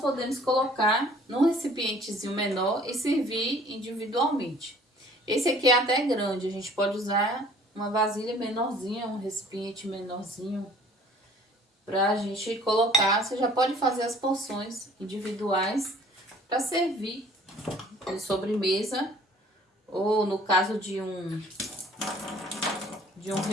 colocar num recipientezinho menor e servir individualmente. Esse aqui é até grande, a gente pode usar uma vasilha menorzinha, um recipiente menorzinho, pra gente colocar. Você já pode fazer as porções individuais para servir de sobremesa, ou no caso de um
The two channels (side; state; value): both; normal; correlation 0.54